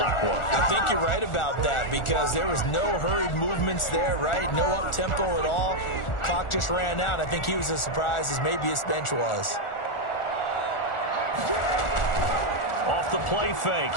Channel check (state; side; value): late; right; 1.4 ms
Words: was. I think you're right about that because there was no hurried movements there, right? No up-tempo at all. Clock just ran out. I think he was as surprised as maybe his bench was. Off the play fake,